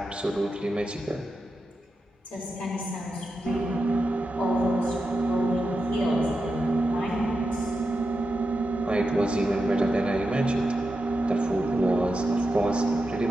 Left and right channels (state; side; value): normal; both; correlation 0.89